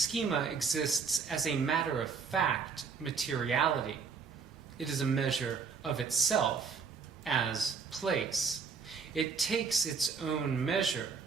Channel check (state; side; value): quieter; left; 5.5 dB